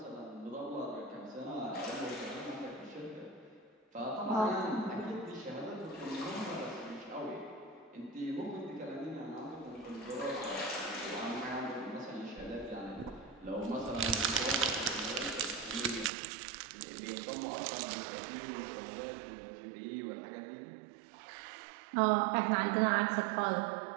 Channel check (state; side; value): drops out; left; at 16.1 s